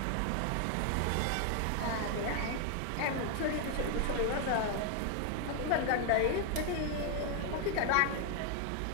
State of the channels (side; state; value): both; different; correlation 0.00